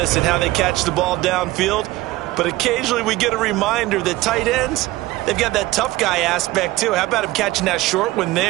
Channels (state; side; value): quieter; left; 18.2 dB